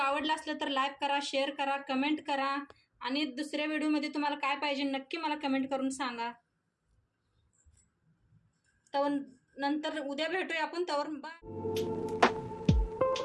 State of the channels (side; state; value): both; identical; correlation 1.00